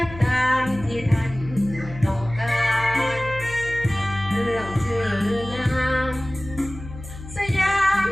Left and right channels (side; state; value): left; noise; hum, 13 dB below the sound